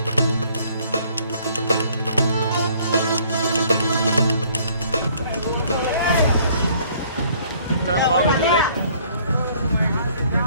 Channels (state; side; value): inverted; both; correlation -0.60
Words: तर पाव घेतलेले